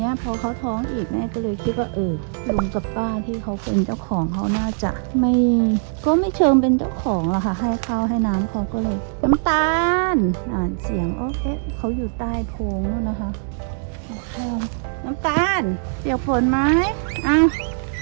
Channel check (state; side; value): silent; left; digital silence